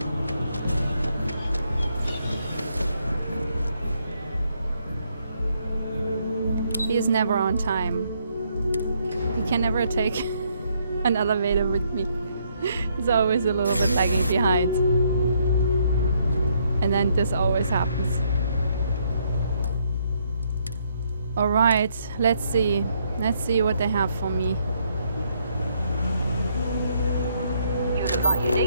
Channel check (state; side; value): inverted; both; correlation -0.72